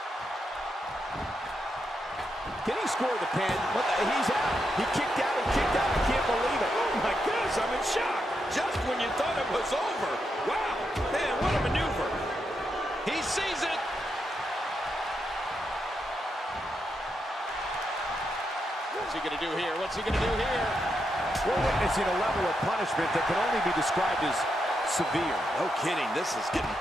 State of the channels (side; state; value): both; normal; correlation 0.83